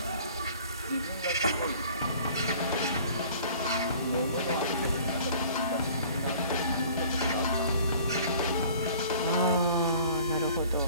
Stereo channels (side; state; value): both; inverted; correlation -0.50